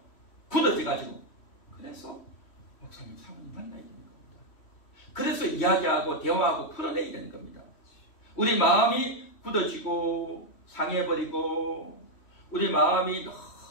굳어져가지고. 그래서 목사님, 사모님 만나야 되는 겁니다. 그래서 이야기하고 대화하고 풀어내야 되는 겁니다. 우리 마음이 굳어지고 상해버리고 우리 마음이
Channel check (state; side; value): late; right; 3.1 ms